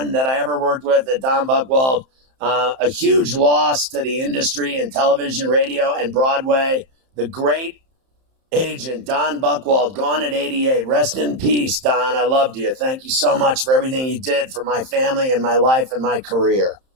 that I ever worked with at Don Buchwald. A huge loss to the industry in television, radio, and Broadway. The great agent, Don Buchwald, gone at 88. Rest in peace, Don. I loved you. Thank you so much for everything you did for my family and my life and my career.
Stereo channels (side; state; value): left; late; 31 ms